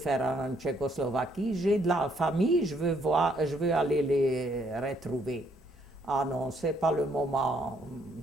en Tchécoslovaquie? J'ai de la famille, je veux aller les retrouver. Ah non, ce n'est pas le moment,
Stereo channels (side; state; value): both; normal; correlation 0.70